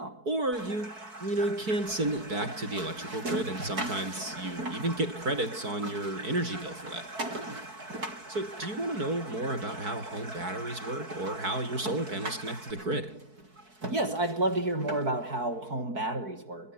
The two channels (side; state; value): left; late; 4.6 ms